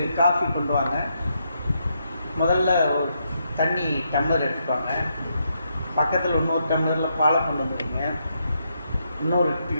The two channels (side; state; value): both; inverted; correlation -0.79